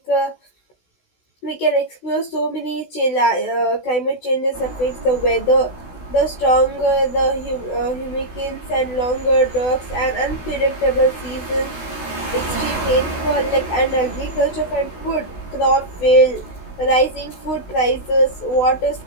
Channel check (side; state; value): right; late; 16 ms